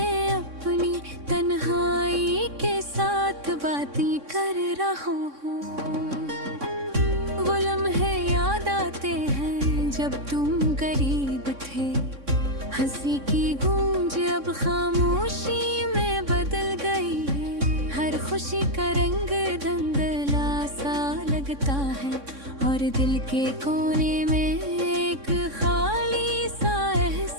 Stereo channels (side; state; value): left; late; 3.6 ms